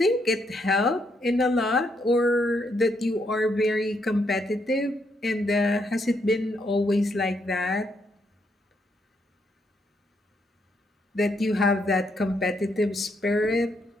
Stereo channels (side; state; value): both; normal; correlation 0.76